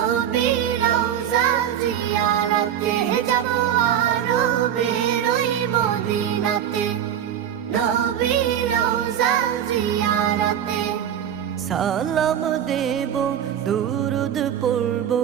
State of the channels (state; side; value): quieter; left; 9.7 dB